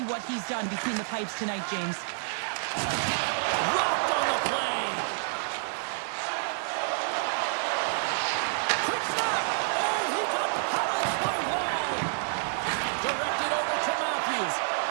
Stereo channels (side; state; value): left; silent; digital silence